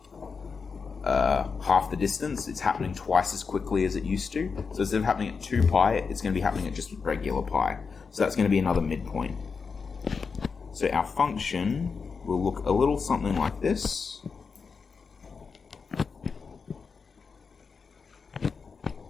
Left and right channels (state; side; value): quieter; right; 5.3 dB